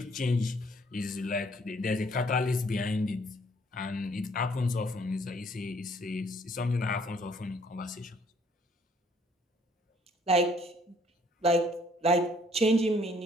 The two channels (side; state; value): both; normal; correlation 0.63